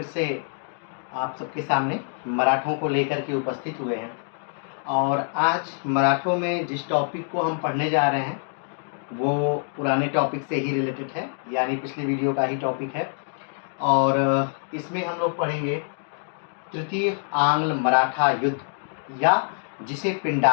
से आप सबके सामने मराठों को लेकर के उपस्थित हुए हैं और आज मराठों में जिस टॉपिक को हम पढ़ने जा रहे हैं वो पुराने टॉपिक से ही रिलेटेड है, यानी पिछले वीडियो का ही टॉपिक है। और इसमें हम लोग पढ़ेंगे तृतीय आंग्ल मराठा युद्ध, या जिसे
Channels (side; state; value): right; silent; 62 dB below the other